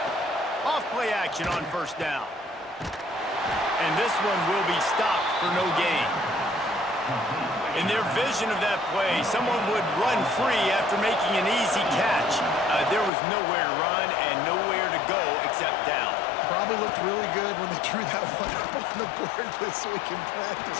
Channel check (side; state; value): right; drops out; at 13.1 s